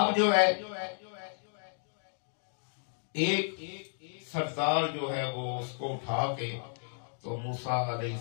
جو ہے ایک سردار جو ہے وہ اس کو اٹھا کے تو موسیٰ علیہ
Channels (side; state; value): right; silent; digital silence